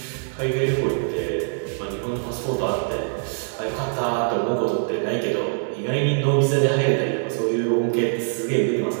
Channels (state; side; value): silent; left; digital silence